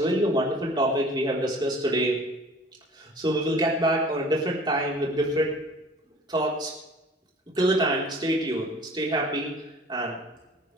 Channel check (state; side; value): normal; both; correlation 0.47